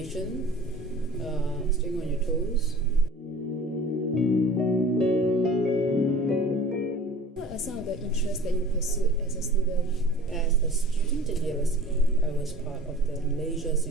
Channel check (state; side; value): normal; both; correlation 0.43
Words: staying on your toes. What are some of the interests that you pursued as a student? As a student at USE, I was part of the Malaysia